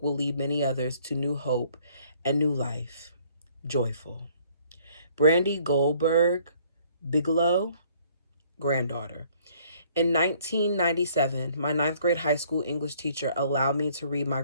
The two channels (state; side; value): inverted; both; correlation -0.61